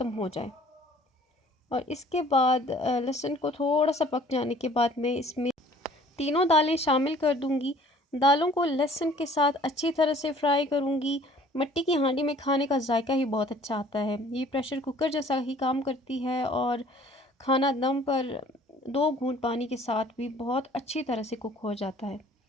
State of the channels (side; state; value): both; normal; correlation 0.53